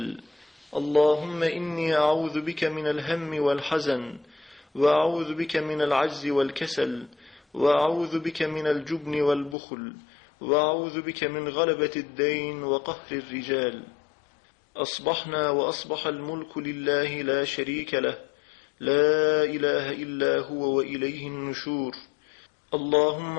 اللهم إني أعوذ بك من الهم والحزن، وأعوذ بك من العجز والكسل، وأعوذ بك من الجبن والبخل، وأعوذ بك من غلبة الدين وقهر الرجال. أصبحنا وأصبح الملك لله لا شريك له، لا إله إلا هو وإليه النشور.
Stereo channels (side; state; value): right; drops out; at 9.6 s